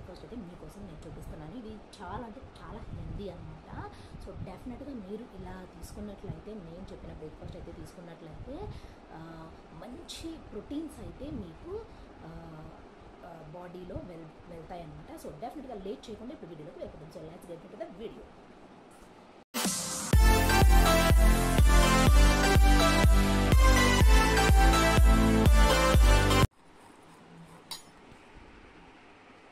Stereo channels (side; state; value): both; identical; correlation 1.00